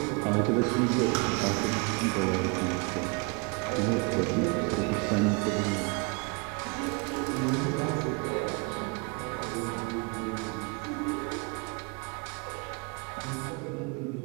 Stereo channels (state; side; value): quieter; left; 31.9 dB